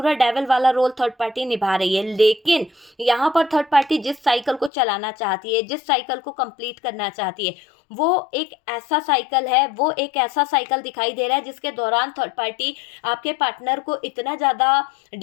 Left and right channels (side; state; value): right; drops out; at 4.7 s